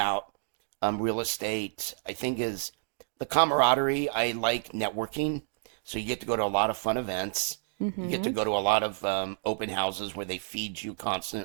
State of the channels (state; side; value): silent; left; digital silence